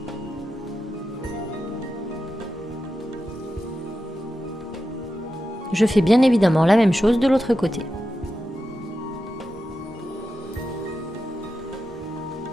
Je fais bien évidemment la même chose de l'autre côté.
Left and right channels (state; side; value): normal; both; correlation 0.90